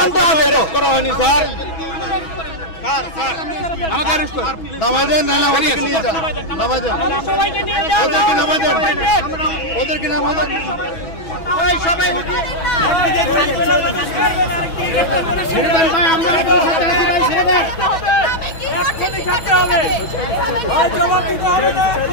হবে। করা হয়নি স্যার। আমাকে অ্যারেস্ট করুন, নামাই দেন। না না, ওদেরকে নিয়ে যান, নামাই দেন, সবাইকে নিয়ে যান, ওদেরকে নামাই দেন, ওদেরকে নামাই দেন। ওই সবাই ছেড়ে দেন ভাই, আমরা আপনাদের সাথে আছি ভাই, ছেড়ে দেন। আমি কি করতে কি করতে হবে? ভাই জবাব দিতে হবে,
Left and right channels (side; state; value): right; late; 6.1 ms